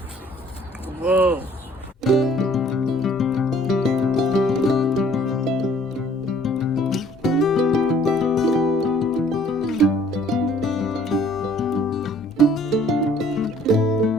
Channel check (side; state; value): both; normal; correlation 0.57